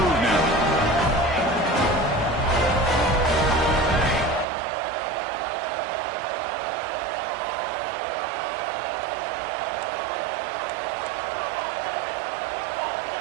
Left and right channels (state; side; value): drops out; left; at 4.5 s